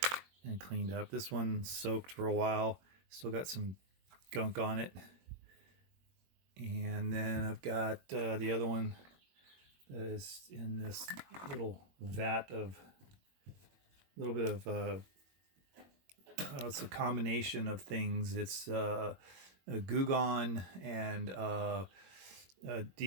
and cleaned up. This one soaked for a while, still got some gunk on it. And then I've got the other one that is in this little vat of a little bit of it's a combination of things. It's a Gugon and a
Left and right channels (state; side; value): late; left; 21 ms